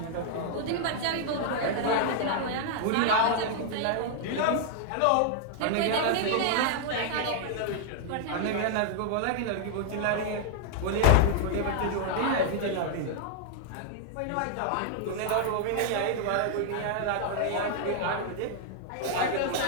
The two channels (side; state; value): both; different; correlation -0.01